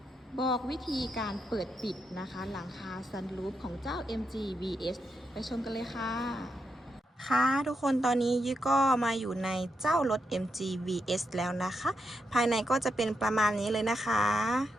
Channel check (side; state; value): both; normal; correlation 0.84